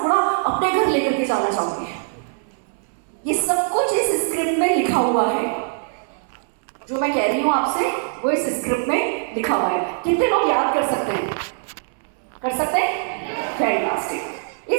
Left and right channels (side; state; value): left; silent; 64 dB below the other